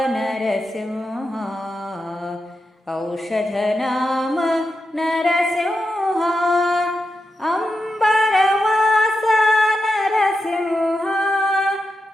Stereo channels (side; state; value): both; normal; correlation 0.88